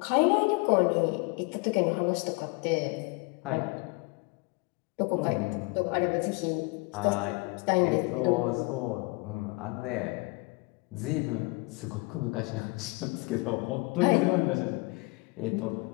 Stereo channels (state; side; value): quieter; right; 27.8 dB